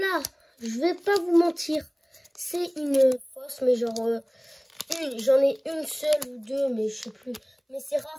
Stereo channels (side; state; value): both; identical; correlation 1.00